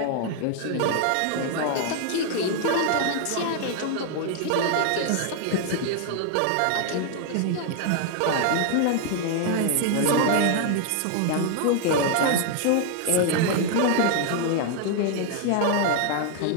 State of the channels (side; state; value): both; different; correlation 0.00